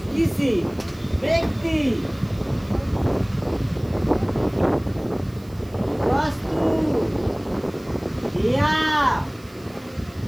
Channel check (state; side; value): noise; right; hiss, 27 dB below the sound